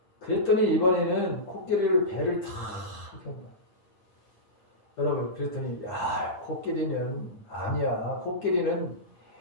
그랬더니 이번에는 코끼리를 배를 탁 여러분 그랬더니 야 코끼리는 아니야. 코끼리는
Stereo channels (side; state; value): right; late; 9.3 ms